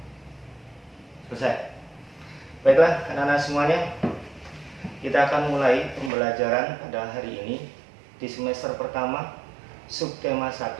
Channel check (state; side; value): drops out; left; at 6.1 s